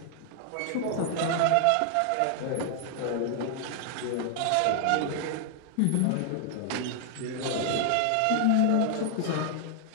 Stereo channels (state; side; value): different; both; correlation 0.00